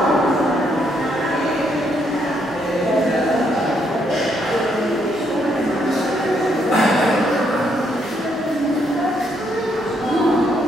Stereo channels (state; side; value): normal; both; correlation 0.74